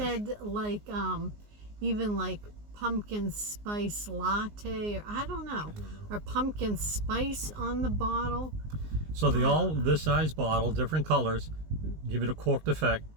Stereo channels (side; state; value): left; late; 19 ms